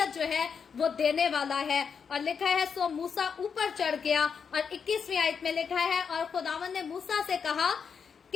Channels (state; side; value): quieter; right; 6.4 dB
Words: जो है वो देने वाला है। और लिखा है सो मूसा ऊपर चढ़ गया, और 21वीं आयत में लिखा है और खुदावन ने मूसा से कहा